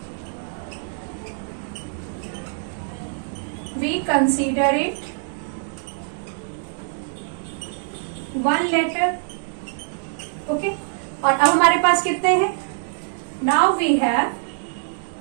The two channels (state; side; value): silent; left; digital silence